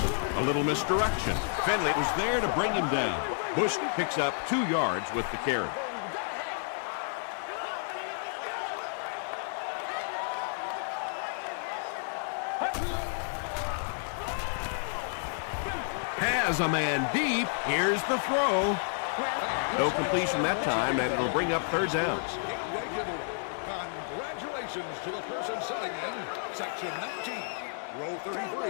A little misdirection. Finley was there to bring him down. Bush picks up 2 yards with the carry. Has a man deep. Here's the throw. No completion that time, and it'll bring up third down. Congratulations to the person sitting in section 19, row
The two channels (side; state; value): right; silent; digital silence